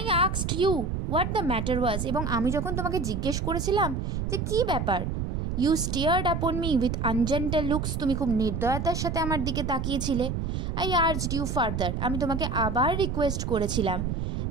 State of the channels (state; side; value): noise; right; rumble, 2 dB below the sound